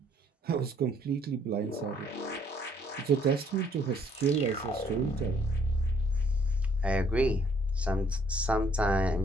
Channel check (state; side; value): normal; both; correlation 0.65